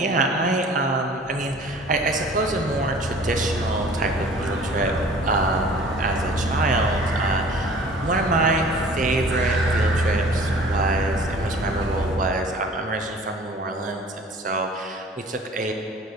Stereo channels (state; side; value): normal; both; correlation 0.47